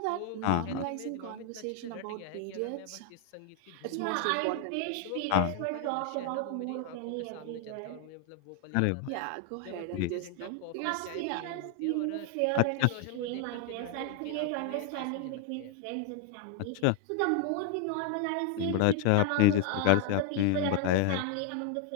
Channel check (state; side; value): different; both; correlation 0.01